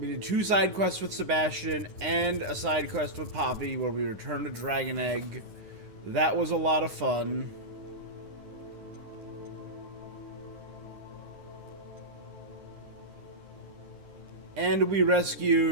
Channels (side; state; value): left; late; 9.9 ms